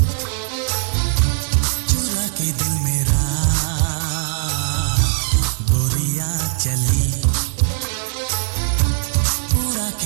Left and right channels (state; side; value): silent; left; 61 dB below the other